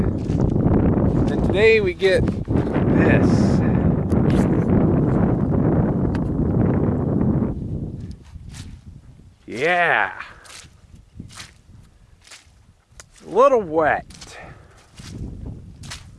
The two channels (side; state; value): both; identical; correlation 1.00